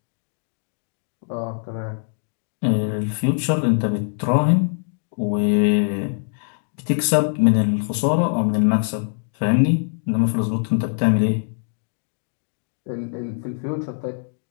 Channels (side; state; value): right; silent; digital silence